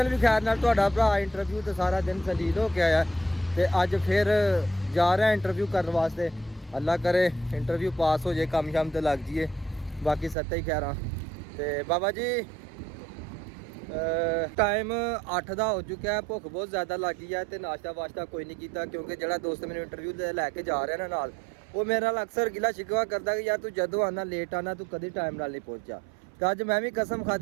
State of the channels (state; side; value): drops out; left; at 10.4 s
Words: भी खैर नाल तुहाडा भरा इंटरव्यू तो सारा दिन सलील हो के आया ते अज फिर जा रहा इंटरव्यू करने वास्ते। अल्लाह करे इंटरव्यू पास हो जाए काम शाम तो लग जाइए बाकी सत्ता ही खैर तो बाबा जी टाइम 8 का हो चुका है भुख बहुत ज़्यादा लग गई है तो नाश्ता वाश्ता कोई नहीं किया क्योंकि जो दोस्त मैंने इंटरव्यू लैके जा रहे हैं नाल वो मेरे नाल अक्सर गिला शिकवा करता कि यार तू जदों आना लेट आना तू कभी टाइम नाल नहीं पहुंचा। तो अज मैं भी कसम